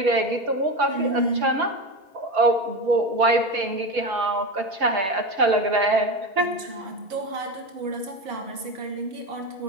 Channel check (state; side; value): late; left; 4.8 ms